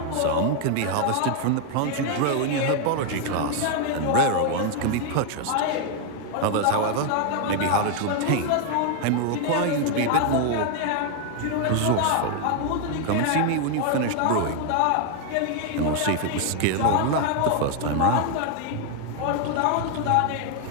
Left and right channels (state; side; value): different; both; correlation 0.00